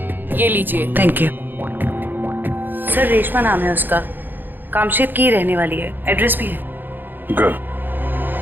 ये लीजिए। Thank you. सर रेशमा नाम है उसका, कामशेद की रहने वाली है, एड्रेस भी है। गुड।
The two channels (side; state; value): left; late; 0.092 ms